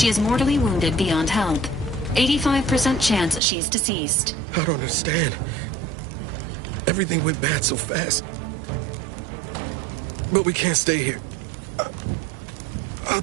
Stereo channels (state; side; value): drops out; left; at 3.4 s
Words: is mortally wounded beyond help. 85% chance she's deceased. I don't understand. Everything went bad so fast. But we can't stay here.